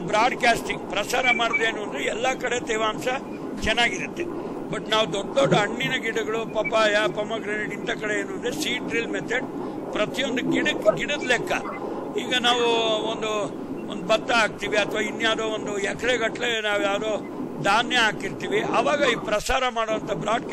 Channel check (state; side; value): identical; both; correlation 1.00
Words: ಬ್ರಾಡ್ಕಾಸ್ಟಿಂಗ್ ಪ್ರಸಾರ ಮಾಡೋದೇನು ಅಂದ್ರೆ, ಎಲ್ಲ ಕಡೆ ತೇವಾಂಶ ಚೆನ್ನಾಗಿರುತ್ತೆ. ಬಟ್ ನಾವು ದೊಡ್ಡ ದೊಡ್ಡ ಹಣ್ಣಿನ ಗಿಡಗಳು, ಪಪಾಯ, ಪೊಮಗ್ರೆನೇಟ್ ಇಂಥ ಕಡೆ ಏನು ಅಂದ್ರೆ ಸೀಡ್ ಡ್ರಿಲ್ ಮೆಥಡ್ ಪ್ರತಿಯೊಂದು ಗಿಡದ ಲೆಕ್ಕ. ಈಗ ನಾವು ಒಂದು ಭತ್ತ ಹಾಕ್ತಿವಿ ಅಥವಾ ಇನ್ಯಾವುದೋ ಒಂದು ಎಕರೆಗಟ್ಟಲೆ ನಾವು ಯಾವುದೋ ಧಾನ್ಯ ಹಾಕಿರ್ತೀವಿ, ಆವಾಗ ಈ ಪ್ರಸಾರ ಮಾಡುವಂತ